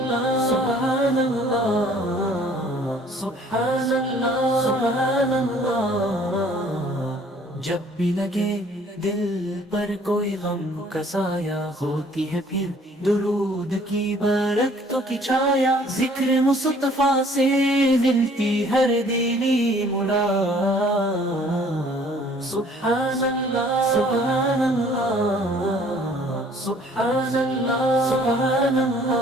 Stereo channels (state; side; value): normal; both; correlation 0.56